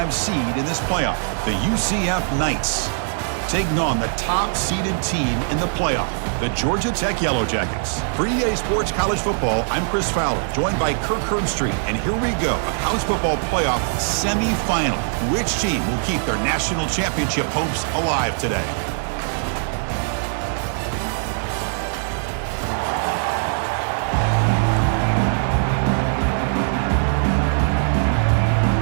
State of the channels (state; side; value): silent; left; digital silence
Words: seed in this playoff, the UCF Knights, taking on the top-seeded team in the playoff, the Georgia Tech Yellow Jackets. For EA Sports College Football, I'm Chris Fowler, joined by Kirk Herbstreit, and here we go, a college football playoff semifinal. Which team will keep their national championship hopes alive today?